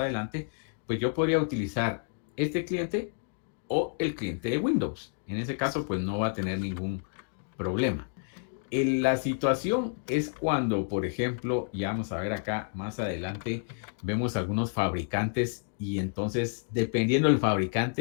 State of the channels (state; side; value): silent; right; digital silence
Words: pues yo podría utilizar este cliente o el cliente de Windows. En ese caso, pues no va a tener ningún problema. La situación es cuando, por ejemplo, ya vamos a ver acá más adelante, vemos algunos fabricantes y entonces, dependiendo del